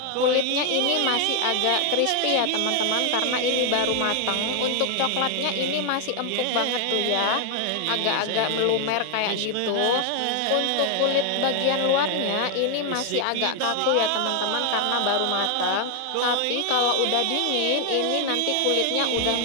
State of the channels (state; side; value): different; both; correlation 0.00